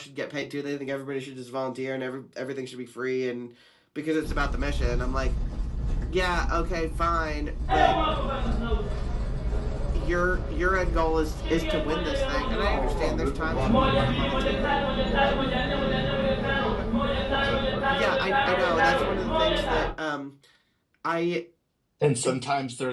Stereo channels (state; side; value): identical; both; correlation 1.00